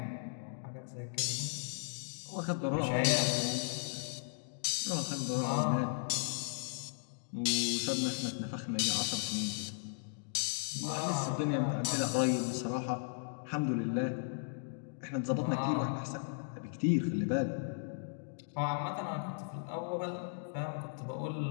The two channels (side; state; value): right; silent; digital silence